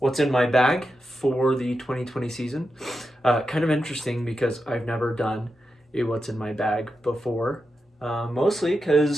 in my bag for the 2020 season. Kind of interesting because I've never done a what's in my bag before, mostly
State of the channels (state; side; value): normal; both; correlation 0.88